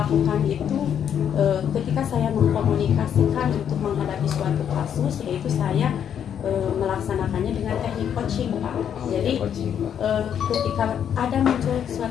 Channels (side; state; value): right; quieter; 8.8 dB